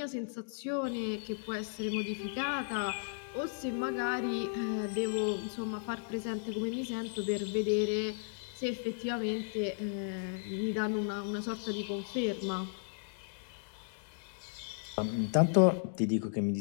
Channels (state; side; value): silent; right; digital silence